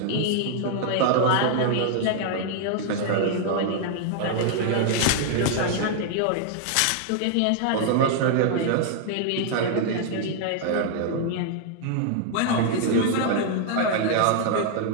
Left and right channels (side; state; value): both; different; correlation 0.00